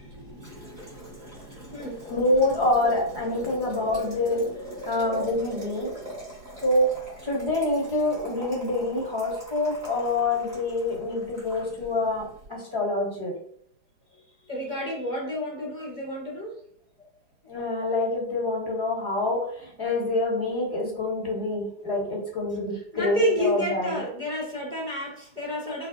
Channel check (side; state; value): left; late; 4.8 ms